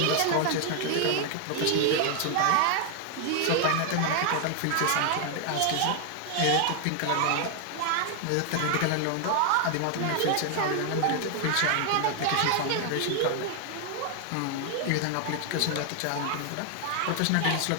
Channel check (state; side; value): different; both; correlation 0.00